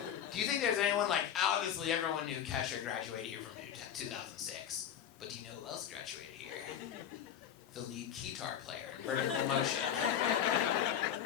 Do you think there's anyone like, obviously everyone knew Kesha graduated here from 2006. But do you know who else graduated here? The lead guitar player in Vertical Motion.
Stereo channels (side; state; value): right; quieter; 9.5 dB